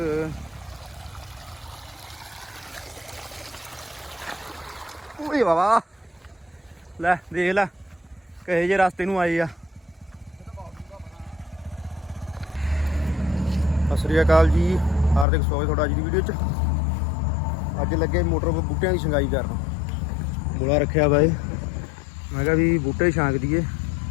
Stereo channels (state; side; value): drops out; right; at 15.2 s